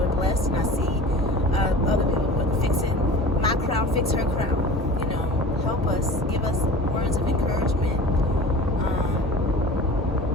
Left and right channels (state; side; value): normal; both; correlation 0.39